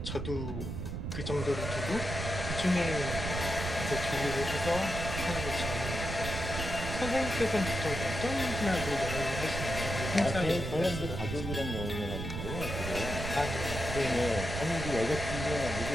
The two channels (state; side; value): noise; right; rumble, 4 dB below the sound